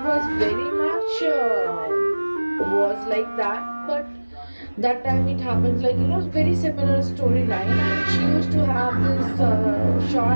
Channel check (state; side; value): inverted; both; correlation -1.00